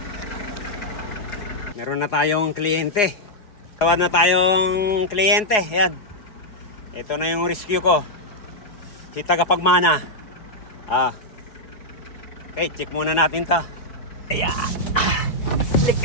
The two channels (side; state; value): right; late; 4.8 ms